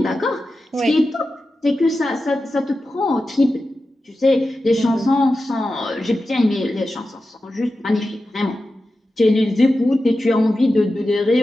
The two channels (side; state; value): both; normal; correlation 0.92